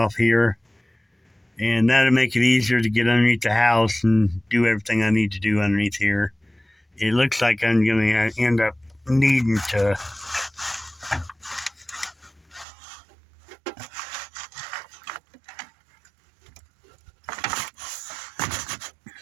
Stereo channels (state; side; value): drops out; left; at 12.7 s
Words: here, and that'll make it easier to get underneath the house and do everything I need to do underneath here. It looks like I'm going to end up needing to